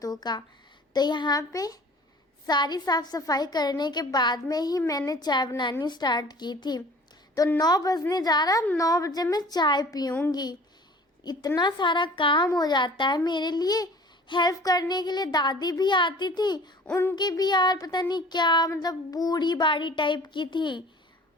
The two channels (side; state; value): both; normal; correlation 0.47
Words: का। तो यहाँ पे सारी साफ सफाई करने के बाद में ही मैंने चाय बनानी स्टार्ट की थी। तो 9 बजने जा रहा, 9 बजे मैं चाय पीऊँगी। इतना सारा काम हो जाता है मेरे लिए। हेल्प करने के लिए दादी भी आती थी, उनकी भी यार पता नहीं क्या मतलब बूढ़ी बाड़ी टाइप की थी।